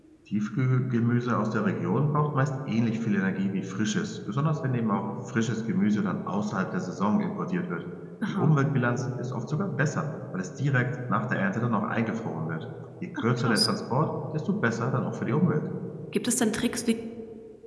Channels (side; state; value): both; identical; correlation 1.00